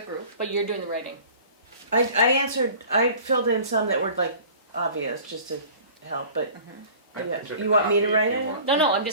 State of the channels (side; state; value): both; inverted; correlation -0.45